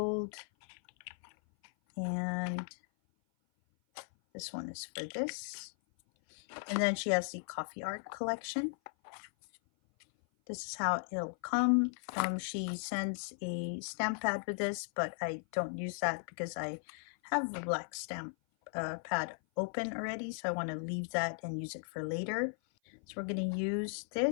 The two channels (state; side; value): silent; right; 53 dB below the other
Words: And this one is for this. And then she has the coffee art collection. This is how it'll come. She sends a stamp pad with this, but I don't use that because I have a black stamp pad open already, so I want to leave that and use it for later. So we're going to use